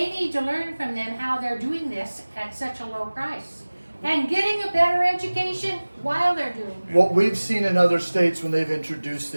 to learn from them how they're doing this at such a low price. And getting a better education while they're doing it. What we've seen in other states when they've introduced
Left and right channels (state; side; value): inverted; both; correlation -1.00